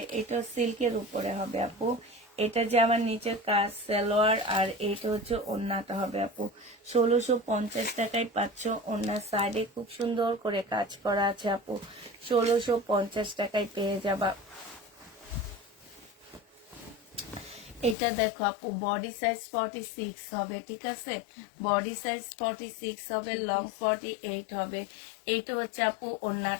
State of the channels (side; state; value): right; drops out; at 17.9 s